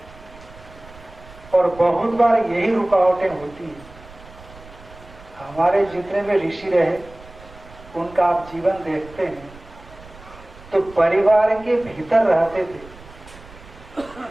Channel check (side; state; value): right; noise; rumble, 20 dB below the sound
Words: और बहुत बार यही रुकावटें होती हैं। हमारे जितने भी ऋषि रहे उनका आप जीवन देखते हैं तो परिवार के भीतर रहते थे,